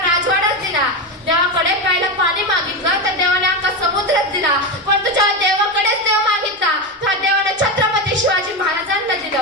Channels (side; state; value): both; normal; correlation 0.15